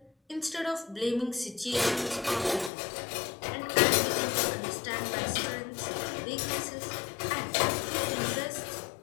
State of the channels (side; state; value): right; drops out; at 2.7 s